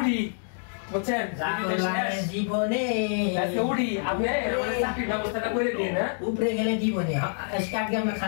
বুঝছেন? জীবনে আজকে উঠি, আপনি আমাদের চাকরির ব্যবস্থাটা করে দিন। হ্যাঁ উপরে গেলে জীবনে আজকে আমরা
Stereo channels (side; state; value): right; silent; digital silence